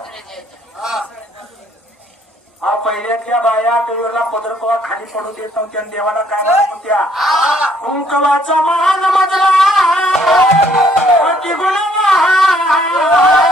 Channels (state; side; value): normal; both; correlation 0.65